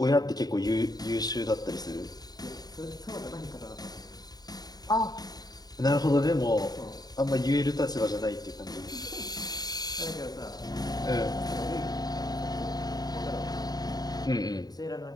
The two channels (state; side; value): late; right; 0.19 ms